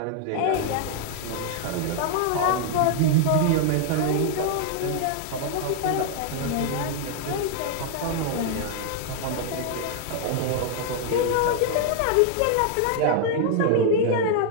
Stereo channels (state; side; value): different; both; correlation 0.00